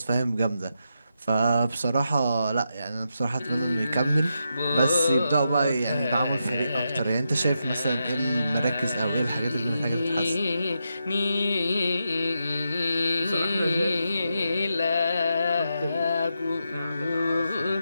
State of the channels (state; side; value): inverted; both; correlation -0.85